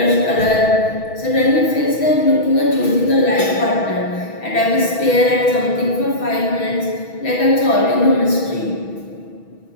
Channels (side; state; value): right; late; 6.2 ms